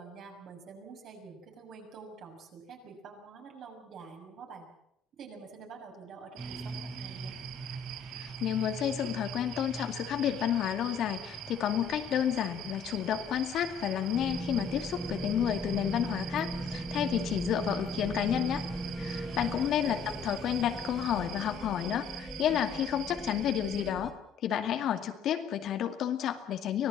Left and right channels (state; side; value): quieter; right; 6.7 dB